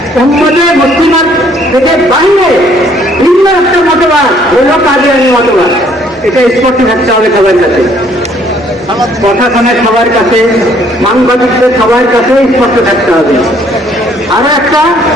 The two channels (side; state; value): both; normal; correlation 0.63